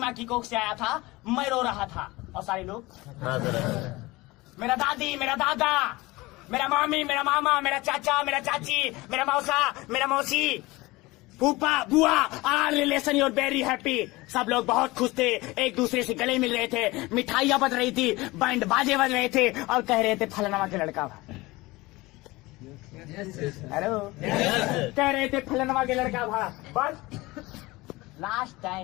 की कोख से आया था, मैं रो रहा था और सारे लोग मेरा दादी, मेरा दादा, मेरा मामी, मेरा मामा, मेरा चाचा, मेरा चाची, मेरा मौसा, मेरा मौसी, फूफा, बुआ, are relation your very happy. सब लोग बहुत खुश थे, एक दूसरे से गले मिल रहे थे, मिठाइयां बज रही थी, बैंड बाजे बज रहे थे और कह रहे थे फलाना के लड़का। हेलो कह रहे थे फलाना के लड़का भा। बस last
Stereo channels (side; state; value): right; quieter; 21.3 dB